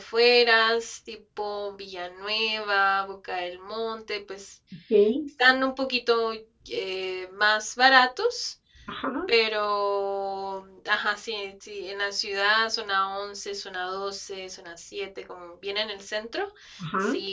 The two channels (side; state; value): both; identical; correlation 1.00